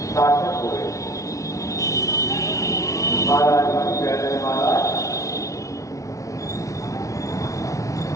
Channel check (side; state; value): right; late; 0.16 ms